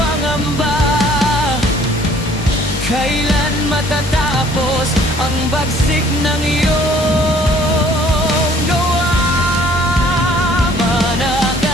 Kailan matatapos ang bagsik ng iyong gawa?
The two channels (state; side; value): normal; both; correlation 0.57